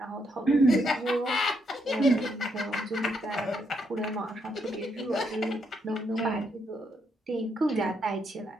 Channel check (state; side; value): normal; both; correlation 0.77